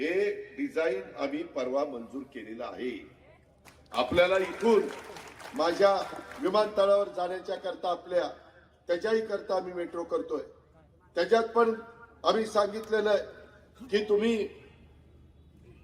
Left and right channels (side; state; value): both; identical; correlation 1.00